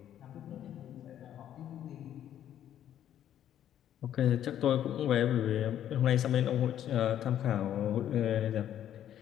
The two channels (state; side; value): quieter; right; 10.8 dB